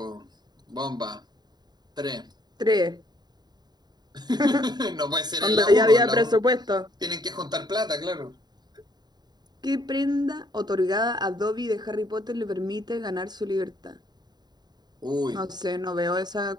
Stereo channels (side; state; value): left; late; 0.20 ms